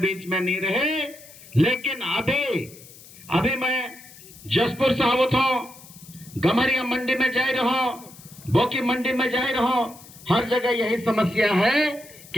में नहीं रहे। लेकिन अभी मैं जसपुर से आवत हूं, गमरिया मंडी में जा रहा हूं, बोकी मंडी में जा रहा हूं, हर जगह यही समस्या है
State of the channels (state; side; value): noise; left; hiss, 20 dB below the sound